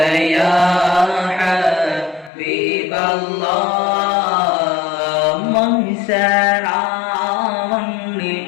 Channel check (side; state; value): right; drops out; at 2.3 s